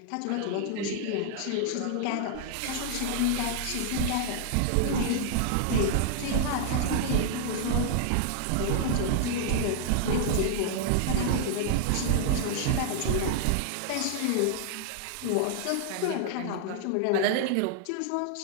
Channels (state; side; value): different; both; correlation -0.01